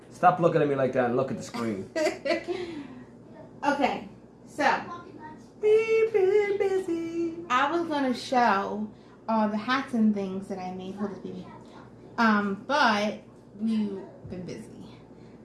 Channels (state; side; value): identical; both; correlation 1.00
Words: Stop looking at me like that and look at the screen. Okay, so We've been busy. I was gonna show all the hats and things that I made for the baby. But we've been busy.